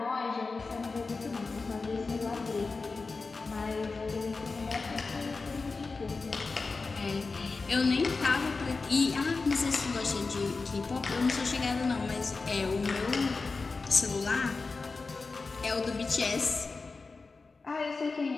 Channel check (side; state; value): right; quieter; 4.1 dB